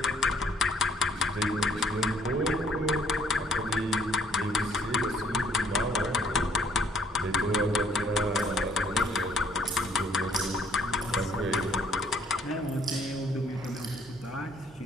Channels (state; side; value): normal; both; correlation 0.63